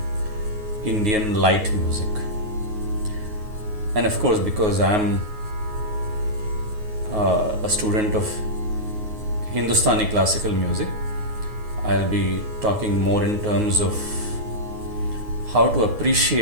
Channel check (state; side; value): late; left; 9.4 ms